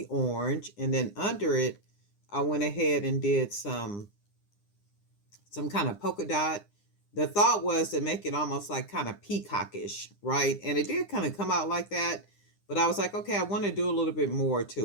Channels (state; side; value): late; right; 9.9 ms